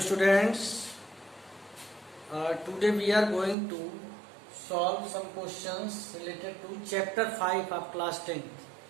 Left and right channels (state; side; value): drops out; left; at 3.6 s